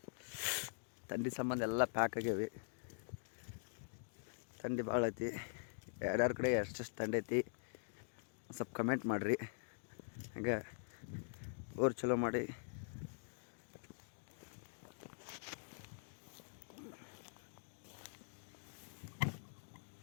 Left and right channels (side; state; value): right; silent; digital silence